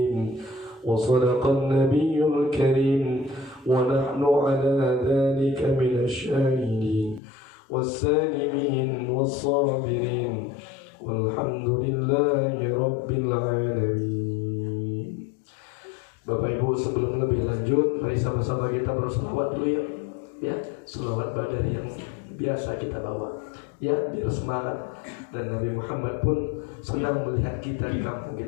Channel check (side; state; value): right; drops out; at 7.2 s